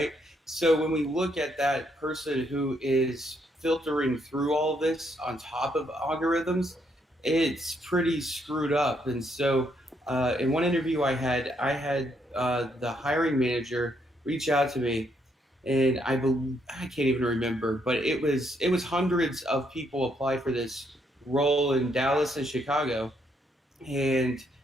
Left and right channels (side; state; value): both; normal; correlation 0.74